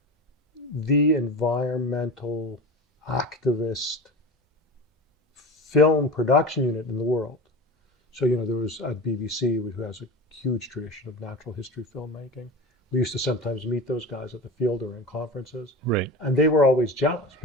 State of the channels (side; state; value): both; normal; correlation 0.30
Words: the environmental activist film production unit in the world. So, there was at BBC, who has a huge tradition of natural history filmmaking. We used to sometimes meet those guys at the field or in conferences. Right. And they were always jealous